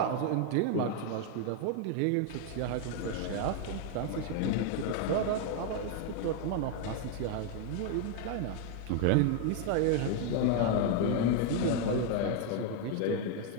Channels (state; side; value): different; both; correlation 0.01